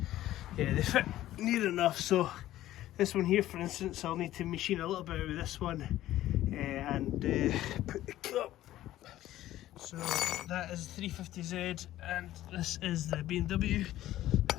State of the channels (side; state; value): right; quieter; 14.2 dB